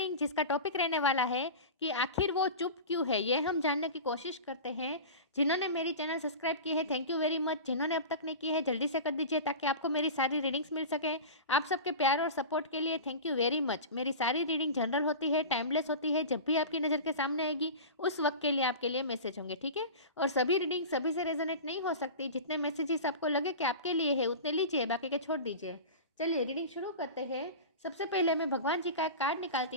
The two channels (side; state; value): both; inverted; correlation -0.30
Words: जिसका टॉपिक रहने वाला है कि आखिर वो चुप क्यों है। ये हम जानने की कोशिश करते हैं। जिन्होंने मेरी चैनल सब्सक्राइब की है, थैंक यू वेरी मच। जिन्होंने अब तक नहीं की है, जल्दी से कर दीजिए ताकि आपको मेरी सारी रीडिंग्स मिल सके। आप सबके प्यार और सपोर्ट के लिए थैंक यू वेरी मच। मेरी सारी रीडिंग जनरल होती है, टाइमलेस होती है। जब भी आपकी नज़र के सामने आएगी उस वक्त के लिए आपके लिए मैसेज होंगे, ठीक है। और सभी रीडिंग सभी से रेजोनेट नहीं हो सकती। जितने मैसेजेस आपको लगे कि आपके लिए है उतने लीजिए, बाकी के छोड़ दीजिए। चलिए रीडिंग शुरू करते हैं। सबसे पहले मैं भगवान जी का एक कार्ड निकालती